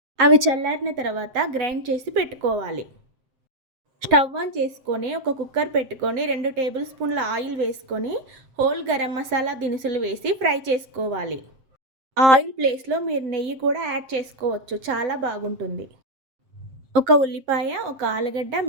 అవి చల్లారిన తర్వాత గ్రైండ్ చేసి పెట్టుకోవాలి. స్టవ్ ఆన్ చేసుకొని ఒక కుక్కర్ పెట్టుకొని 2 టేబుల్ స్పూన్ల ఆయిల్ వేసుకొని హోల్ గరం మసాలా దినుసులు వేసి ఫ్రై చేసుకోవాలి. ఆయిల్ ప్లేస్లో మీరు నెయ్యి కూడా యాడ్ చేసుకోవచ్చు, చాలా బాగుంటుంది. ఒక ఉల్లిపాయ, ఒక ఆలుగడ్డ,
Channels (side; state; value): left; late; 7.6 ms